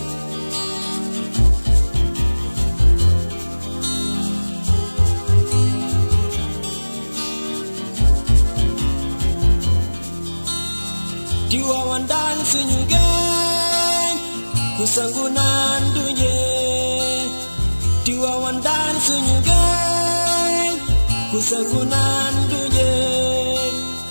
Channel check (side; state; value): both; inverted; correlation -1.00